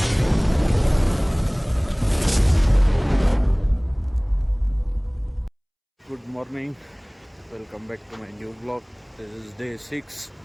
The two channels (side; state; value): both; identical; correlation 1.00